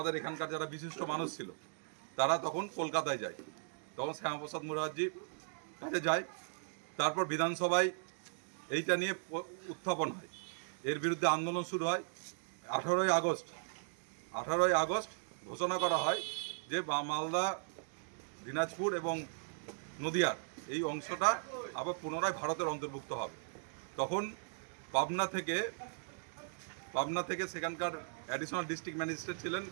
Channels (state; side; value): silent; left; digital silence